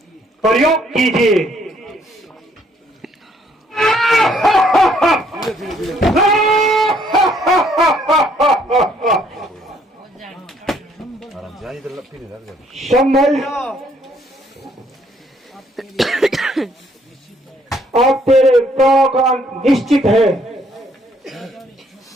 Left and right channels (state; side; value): normal; both; correlation 0.66